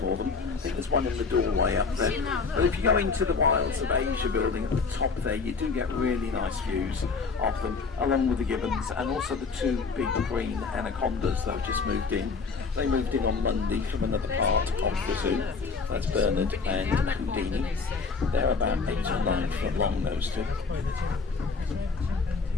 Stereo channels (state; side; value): quieter; right; 4.7 dB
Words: them. I think there's one in the doorway up there. But if you go into the Wilds of Asia building at the top there, you do get really nice views of them, along with the gibbons and also the 2 big green anacondas that have just moved in. They moved in on Monday from another part of the zoo. That's Bernard and Houdini. They're about 8 or 9 foot long, those 2.